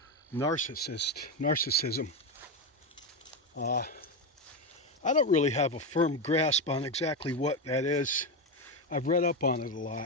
narcissism. I don't really have a firm grasp on exactly what that is. I've read up on it a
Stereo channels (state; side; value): normal; both; correlation 0.11